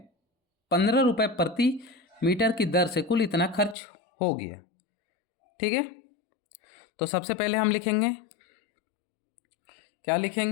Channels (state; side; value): drops out; right; at 3.8 s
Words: 15 रुपये प्रति मीटर की दर से कुल इतना खर्च हो गया। ठीक है। तो सबसे पहले हम लिखेंगे, क्या